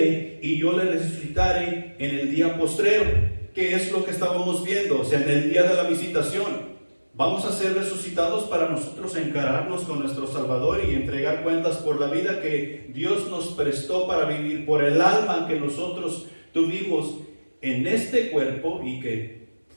y yo le resucitare en el día postrero. ¿Qué es lo que estábamos viendo? O sea, en el día de la visitación. Vamos a ser resucitados para nosotros encararnos con nuestro Salvador y entregar cuentas por la vida que Dios nos prestó para vivir, por el alma que nosotros tuvimos en este cuerpo y que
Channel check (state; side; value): inverted; both; correlation -1.00